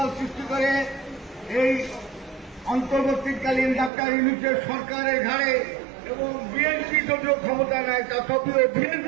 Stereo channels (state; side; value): drops out; left; at 3.9 s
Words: সৃষ্টি করে এই অন্তর্বর্তীকালীন ডাক্তার ইউনূসের সরকারের ঘাড়ে এবং বিএনপি যদিও ক্ষমতা নেয় তথাপিও